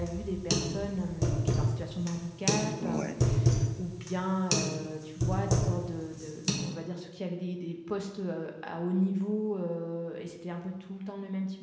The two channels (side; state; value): both; identical; correlation 1.00